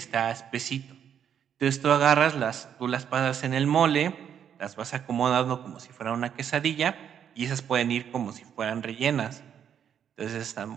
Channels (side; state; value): left; quieter; 8.7 dB